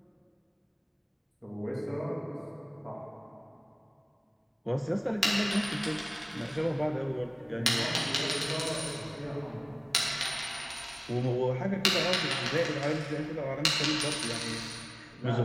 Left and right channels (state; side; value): identical; both; correlation 1.00